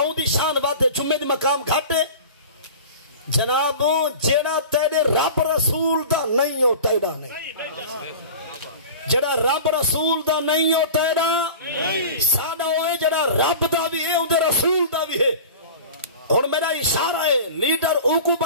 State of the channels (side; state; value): both; inverted; correlation -0.37